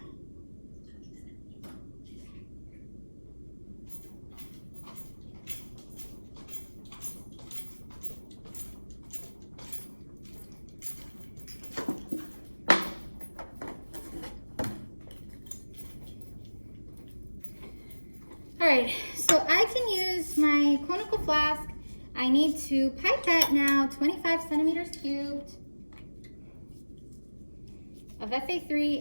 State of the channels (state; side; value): inverted; both; correlation -1.00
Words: All right, so I can use my conical flask. I need to pipette now 25 centimeters cubed of Fa3